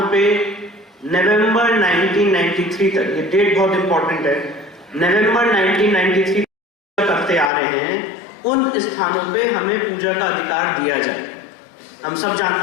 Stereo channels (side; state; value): right; drops out; at 7.5 s